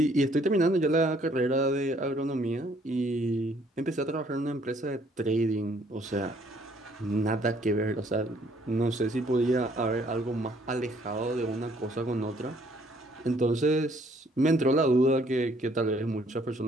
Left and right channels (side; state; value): both; normal; correlation 0.63